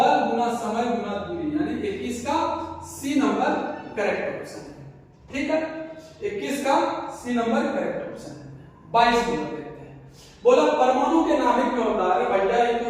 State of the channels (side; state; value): both; identical; correlation 1.00